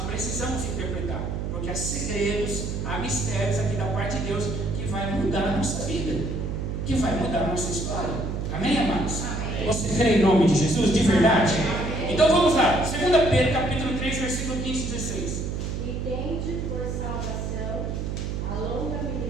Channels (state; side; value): noise; right; hum, 3 dB below the sound